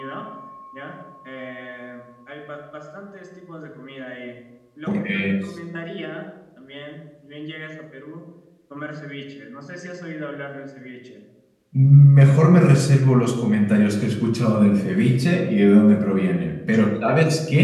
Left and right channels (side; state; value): both; identical; correlation 1.00